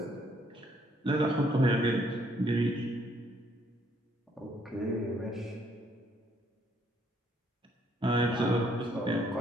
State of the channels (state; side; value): normal; both; correlation 0.68